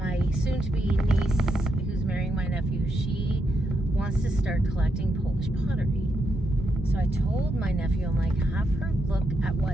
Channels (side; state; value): both; normal; correlation 0.81